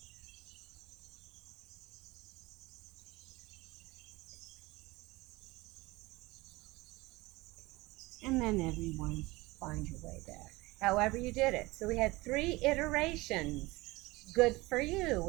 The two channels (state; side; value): quieter; left; 21.6 dB